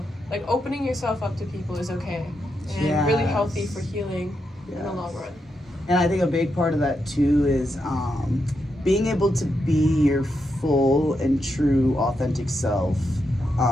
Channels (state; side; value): normal; both; correlation 0.83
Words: like opening yourself up to people is okay and really healthy for healing in the long run. And I think a big part of that too is being able to be your full and true authentic self